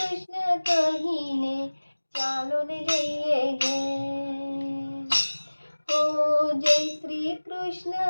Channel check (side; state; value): both; inverted; correlation -1.00